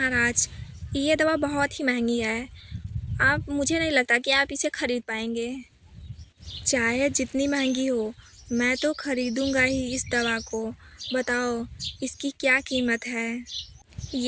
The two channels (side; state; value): both; identical; correlation 1.00